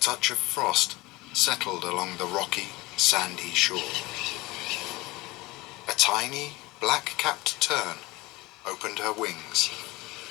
of frost settled along the rocky, sandy shore. A tiny, black-capped tern opened her wings.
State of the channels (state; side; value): quieter; right; 21.4 dB